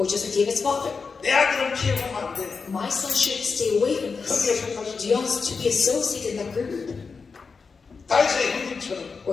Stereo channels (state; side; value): quieter; right; 5.0 dB